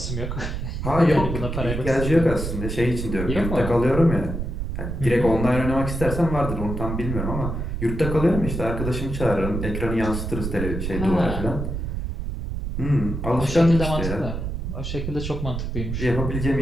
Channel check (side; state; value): right; noise; rumble, 4 dB below the sound